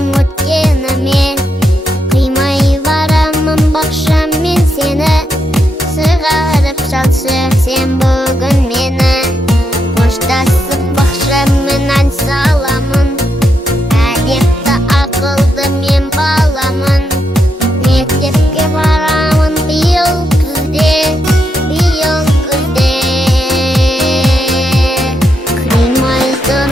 өткеніме, қимай барамын бақшам мен сені, сығарып шалшы сен бүгін мені. Қоштасып бақшаммен ән саламын, әдепті ақылды мен баламын. Мектепке барамын биыл күзде, биыл күзде. Қимай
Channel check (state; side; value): normal; both; correlation 0.81